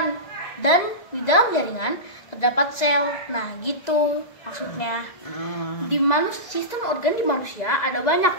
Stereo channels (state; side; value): late; right; 2.0 ms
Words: Dan di dalam jaringan terdapat sel. Nah, gitu maksudnya. Di sistem organ di manusia ada banyak,